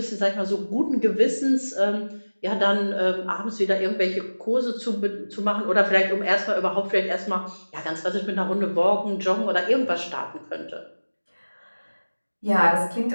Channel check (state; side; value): inverted; both; correlation -1.00